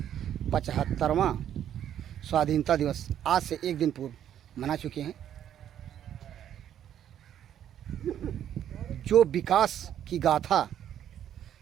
75वां स्वाधीनता दिवस आज से एक दिन पूर्व मना चुके हैं। जो विकास की गाथा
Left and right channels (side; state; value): left; quieter; 10.3 dB